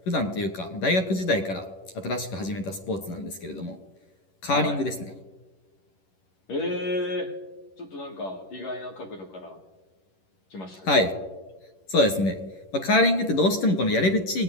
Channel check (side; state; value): right; late; 11 ms